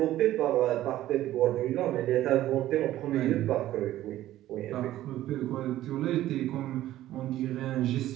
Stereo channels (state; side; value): quieter; left; 14.1 dB